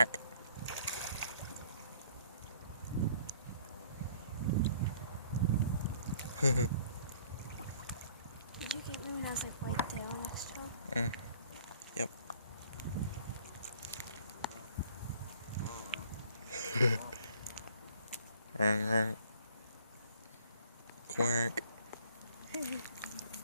Did you get me when I was like right there on that straw? Yep. Quack.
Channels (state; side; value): inverted; both; correlation -0.57